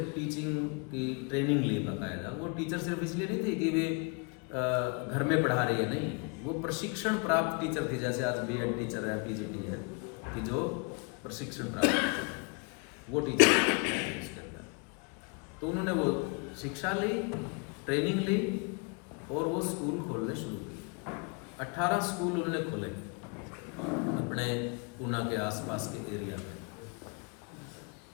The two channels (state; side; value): quieter; right; 33.5 dB